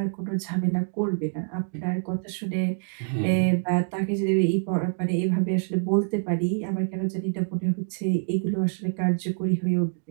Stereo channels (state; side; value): silent; left; digital silence